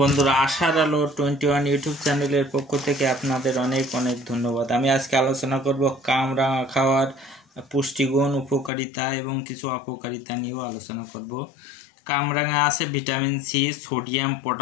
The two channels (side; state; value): right; drops out; at 8.7 s